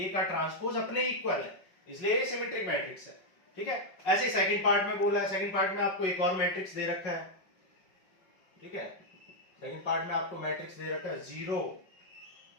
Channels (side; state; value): right; late; 5.4 ms